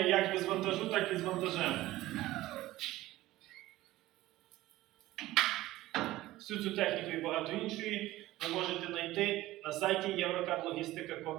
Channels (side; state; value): left; quieter; 16.6 dB